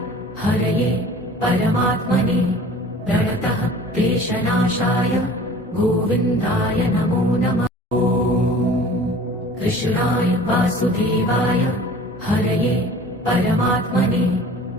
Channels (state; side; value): normal; both; correlation 0.45